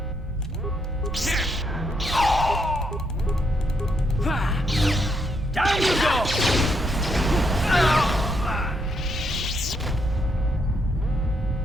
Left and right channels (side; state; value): both; normal; correlation 0.76